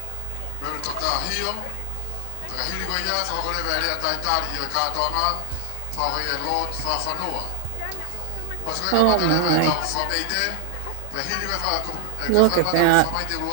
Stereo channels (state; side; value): different; both; correlation 0.00